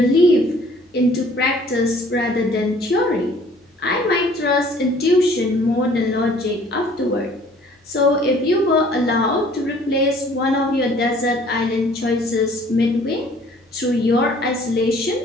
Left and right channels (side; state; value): both; normal; correlation 0.55